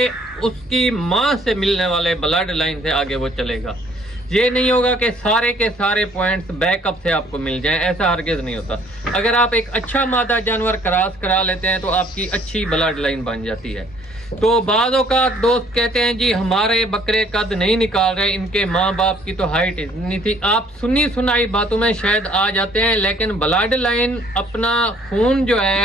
उसकी माँ से मिलने वाले ब्लड लाइन से आगे वो चलेगा। ये नहीं होगा कि सारे के सारे पॉइंट्स बैकअप से आपको मिल जाएं, ऐसा हरगिज नहीं होता। अगर आप एक अच्छा मादा जानवर क्रॉस करा लेते हैं तो आपकी अच्छी ब्लड लाइन बन जाती है। तो बाज़ों का दोस्त कहते हैं जी हमारे बकरे कद नहीं निकाल रहे, इनके माँ बाप की तो हाइट इतनी थी। आप सुनी सुनाई बातों में शायद आ जाते हैं, लेकिन ब्लड लाइन अपना खून जो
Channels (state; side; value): normal; both; correlation 0.60